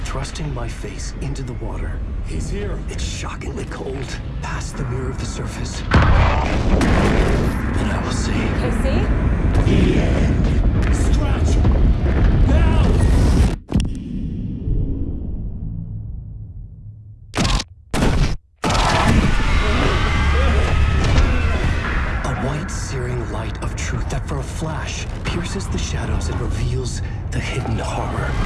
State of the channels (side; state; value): both; identical; correlation 1.00